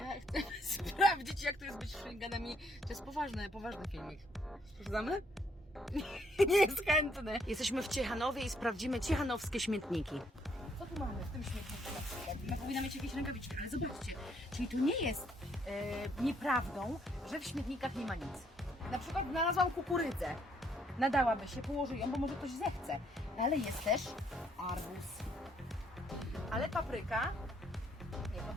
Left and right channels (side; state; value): both; normal; correlation 0.68